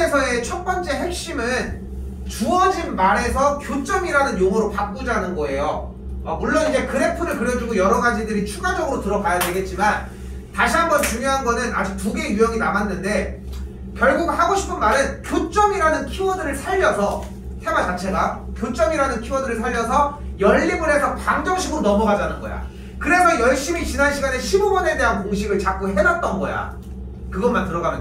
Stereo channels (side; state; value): both; identical; correlation 1.00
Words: 첫 번째 핵심은 주어진 말에서 교점이라는 용어로 바꾸자는 거예요. 물론 이제 그래프를 그려주고 여러 가지들이 추가적으로 들어가야 되겠지만, 다시 한번 중요한 거는 아직 두 개의 유형이 남았는데, 결국 하고 싶은 말은 교점이라는 키워드를 살려서, 테마 자체가 교점이라는 키워드를 살려서 연립을 해서 방정식으로 넘어가자는 거야. 그래서 열심히 지난 시간에 15번에 대한 공식을 자꾸 해놨던 거야. 그것만